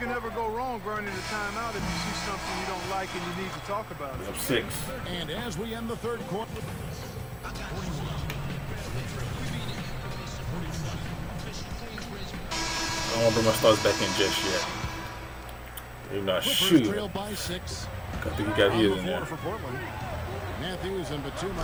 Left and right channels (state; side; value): identical; both; correlation 1.00